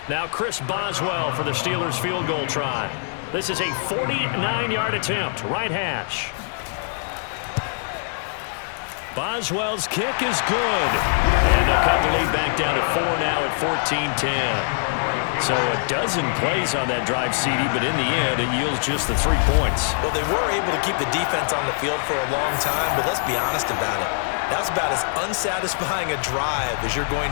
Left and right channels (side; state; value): right; silent; digital silence